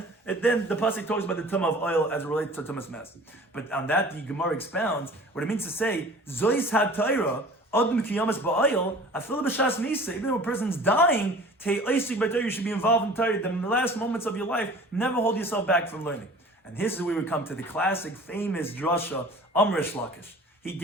and then the pasuk talks about the tumah of oil as it relates to tumas mess. But on that, the Gemara expounds what it means to say, Zois ha-Torah, Adam kiyamas ba'oil, afil b'shas misa, even though a person's dying, you should be involved in Torah. The last moments of your life, never hold yourself back from learning. And this is where we come to the classic, famous drasha, Amrish Lakish. He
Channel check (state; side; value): normal; both; correlation 0.45